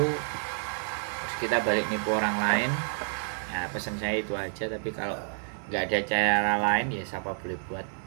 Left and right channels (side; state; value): left; silent; 58 dB below the other